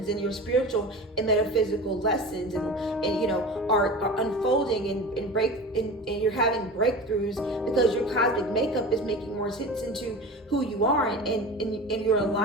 and your spiritual and metaphysical lessons and you know are unfolding and you're having breakthroughs because your cosmic makeup is making more sense into who you are and your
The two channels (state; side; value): normal; both; correlation 0.33